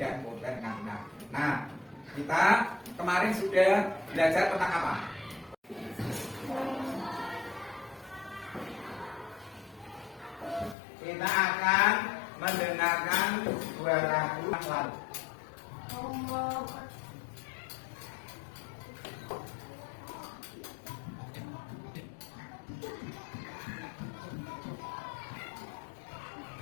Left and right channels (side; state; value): right; drops out; at 10.8 s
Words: kurban dengan benar. Nah, kita kemarin sudah belajar tentang apa? Kita akan mendengarkan dua lagu yang lalu.